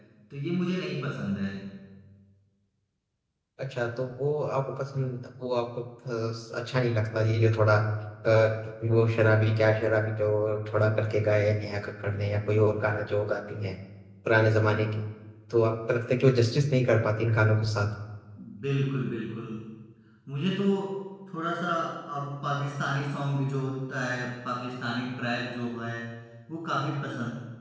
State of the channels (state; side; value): identical; both; correlation 1.00